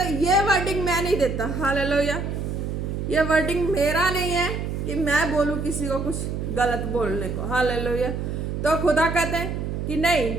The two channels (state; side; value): noise; right; hum, 3 dB below the sound